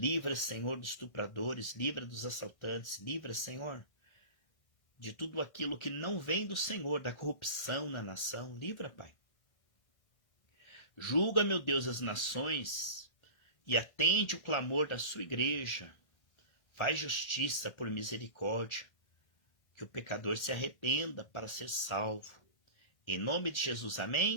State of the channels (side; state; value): right; late; 1.6 ms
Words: Senhor, dos estupradores, livra dos assaltantes, livra, Senhor, de tudo aquilo que não vem do Senhor, da corrupção na nação, livra, Pai. Julga, meu Deus, as nações e atende o clamor da sua igreja. Faz justiça por misericórdia, que o pecador se arrependa para ser salvo. Em nome de Jesus,